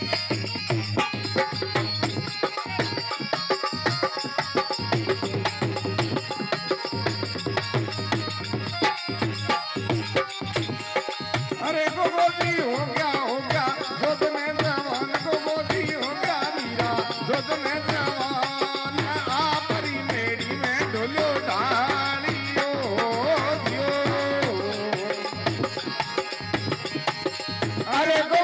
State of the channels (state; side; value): identical; both; correlation 1.00